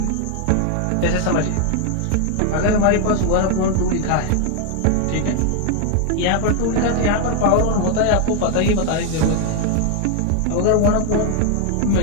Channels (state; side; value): different; both; correlation 0.01